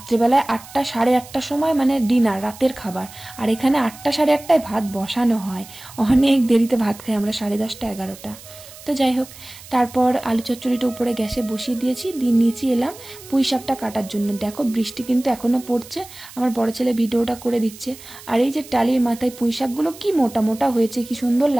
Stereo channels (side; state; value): right; noise; hiss, 18 dB below the sound